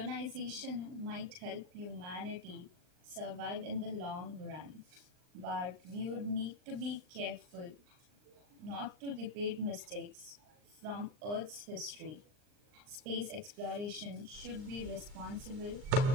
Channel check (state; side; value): late; left; 39 ms